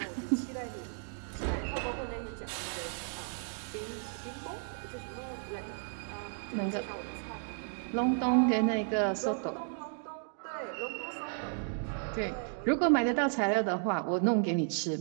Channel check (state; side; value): silent; left; 55 dB below the other